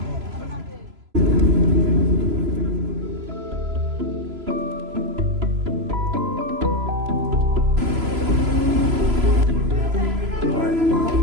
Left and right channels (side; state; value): left; late; 3.0 ms